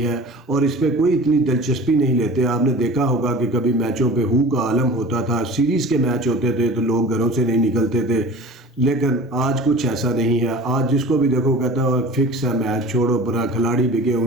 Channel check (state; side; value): normal; both; correlation 0.39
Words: ہے، اور اس پہ کوئی اتنی دلچسپی نہیں لیتے۔ آپ نے دیکھا ہوگا کہ کبھی میچوں پہ ہو کا عالم ہوتا تھا، سیریز کے میچ ہوتے تھے تو لوگ گھروں سے نہیں نکلتے تھے، لیکن آج کچھ ایسا نہیں ہے۔ آج جس کو بھی دیکھو کہتا ہے فکس ہے میچ، چھوڑو برا، کھلاڑی بکے